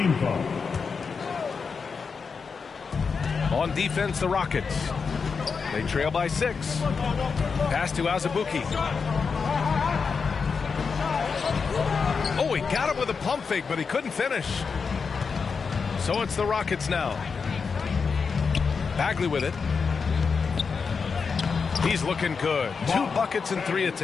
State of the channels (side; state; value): right; quieter; 5.4 dB